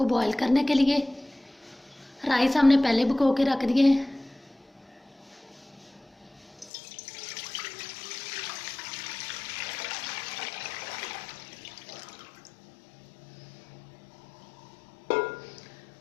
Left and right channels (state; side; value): drops out; right; at 6.7 s